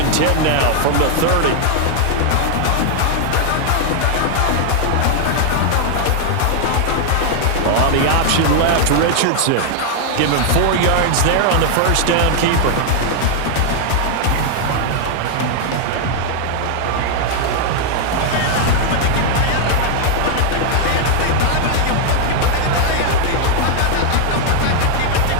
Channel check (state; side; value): different; both; correlation 0.00